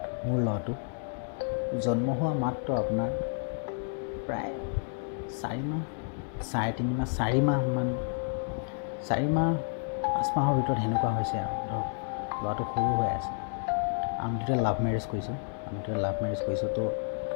মোৰ ল'ৰাটো জন্ম হোৱা মাত্ৰ আপোনাৰ প্ৰায় 4 মাহ, 3.5 মাহ, 4 মাহমান, 4 মাহ 5 মাহৰ ভিতৰত সেনেকুৱা হৈছে আৰু ধৰক ল'ৰাটো সৰু হৈ আছে। আমি দুটা লাভ মেৰেজ কৰিছোঁ। তো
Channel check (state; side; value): silent; right; 58 dB below the other